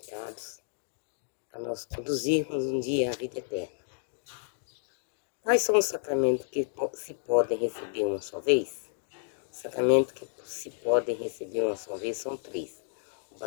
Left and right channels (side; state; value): right; silent; digital silence